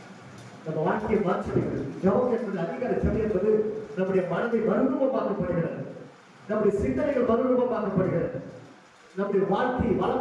நம்ம வாழ்க்கையை மாற்றிடுகிறது. ஜபம் என்பது அதிகார சபை என்பது நம்முடைய மனதை மறுரூபமாக்கப்படுகிறது. நம்முடைய சிந்தனைகள் மறுரூபமாக்கப்படுகிறது. நம்முடைய வாழ்க்கையை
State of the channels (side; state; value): both; identical; correlation 1.00